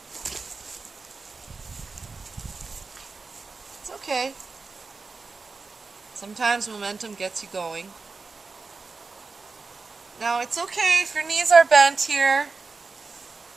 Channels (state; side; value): quieter; left; 4.2 dB